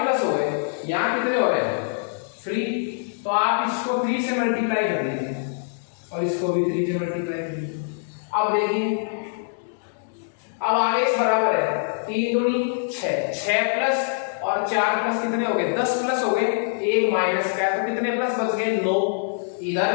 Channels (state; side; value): silent; right; digital silence